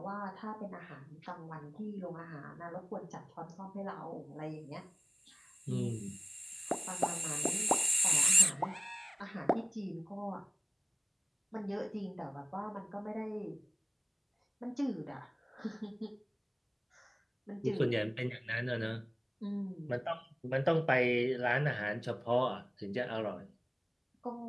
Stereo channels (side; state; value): both; identical; correlation 1.00